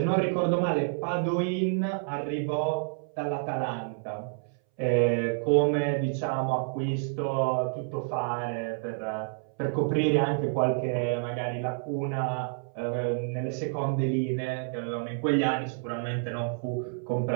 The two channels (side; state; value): left; silent; 59 dB below the other